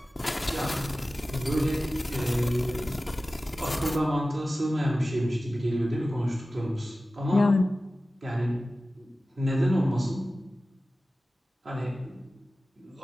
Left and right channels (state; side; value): normal; both; correlation 0.96